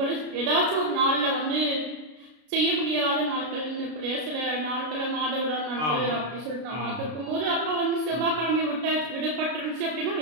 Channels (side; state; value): left; late; 33 ms